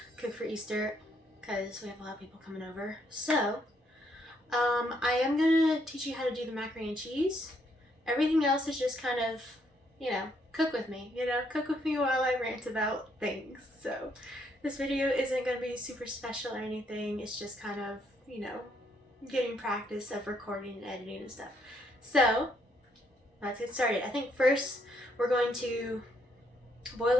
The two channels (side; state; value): both; normal; correlation 0.72